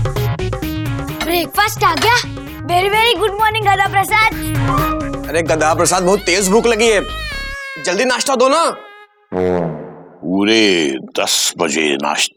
Breakfast आ गया। वेरी वेरी गुड मॉर्निंग गदा प्रसाद। अरे गधा प्रसाद, बहुत तेज भूख लगी है, जल्दी नाश्ता दो ना। पूरे 10 बजे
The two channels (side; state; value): both; identical; correlation 1.00